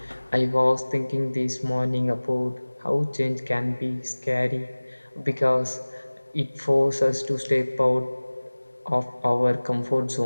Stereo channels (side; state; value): both; inverted; correlation -1.00